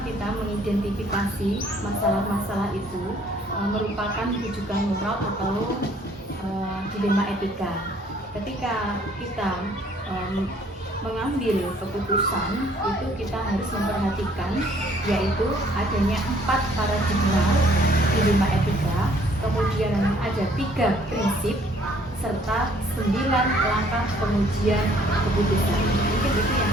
kita mengidentifikasi masalah-masalah itu merupakan rujukan moral atau dilema etika. Ketika kita mengambil keputusan itu kita harus memperhatikan yaitu adanya 4 paradigma dilema etika, kemudian ada 3 prinsip serta 9 langkah pengujian keputusan. Mungkin itu yang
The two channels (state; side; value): normal; both; correlation 0.60